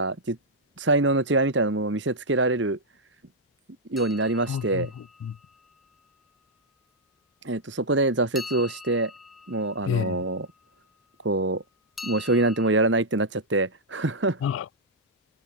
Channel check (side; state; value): both; normal; correlation -0.06